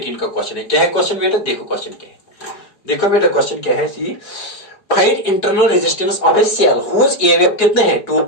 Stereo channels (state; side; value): late; right; 4.8 ms